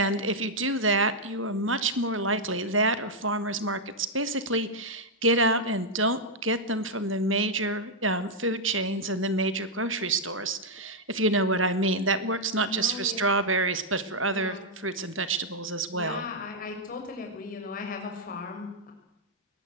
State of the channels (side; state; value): both; normal; correlation -0.03